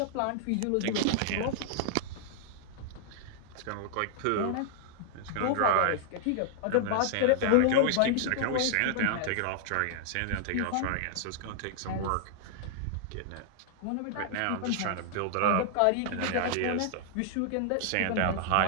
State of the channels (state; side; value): different; both; correlation 0.00